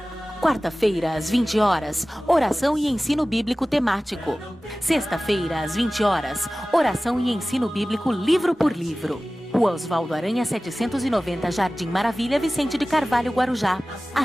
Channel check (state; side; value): normal; both; correlation 0.97